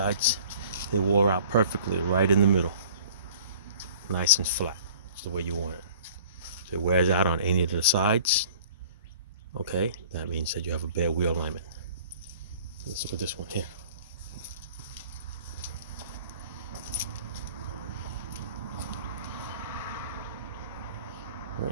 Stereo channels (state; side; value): inverted; both; correlation -0.49